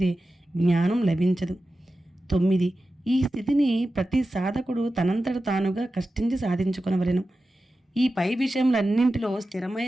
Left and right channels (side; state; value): both; normal; correlation 0.93